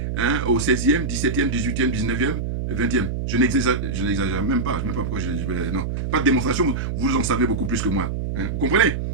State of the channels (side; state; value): right; noise; hum, 3 dB below the sound